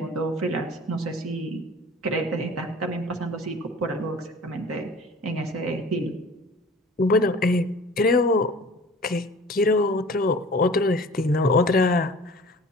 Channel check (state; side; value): normal; both; correlation 0.44